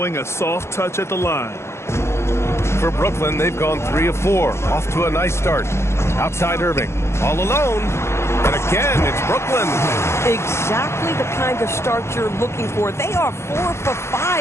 a soft touch at the line. For Brooklyn, they've gone 3 of 4. Off to a nice start. Outside Irving. All alone. And again, it's Brooklyn. Exactly the kind of start you're looking for. They are 4 for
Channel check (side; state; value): right; late; 0.13 ms